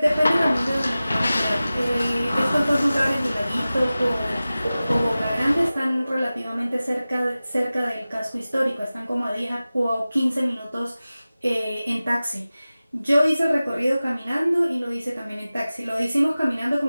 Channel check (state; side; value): inverted; both; correlation -0.96